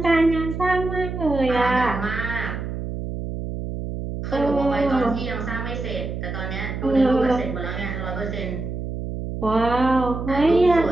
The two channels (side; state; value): right; noise; hum, 5 dB below the sound